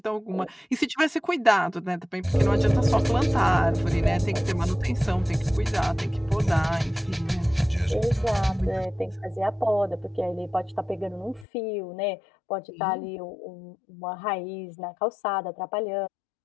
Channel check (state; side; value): drops out; right; at 11.5 s